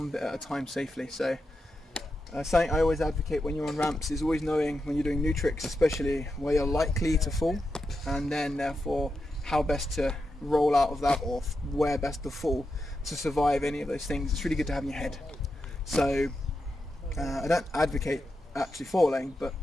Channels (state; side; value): normal; both; correlation 0.87